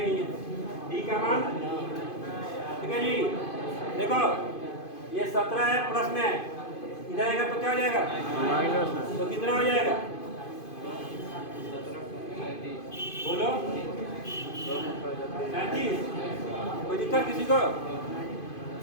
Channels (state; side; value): late; right; 2.5 ms